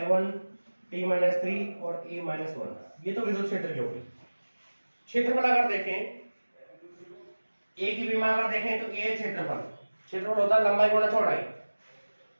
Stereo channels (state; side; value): inverted; both; correlation -1.00